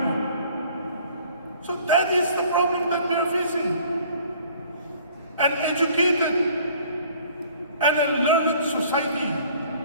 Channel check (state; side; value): inverted; both; correlation -0.54